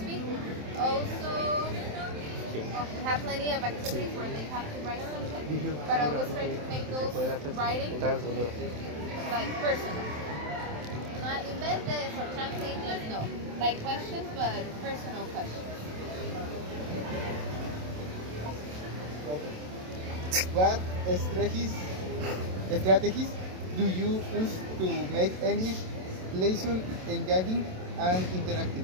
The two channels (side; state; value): left; late; 27 ms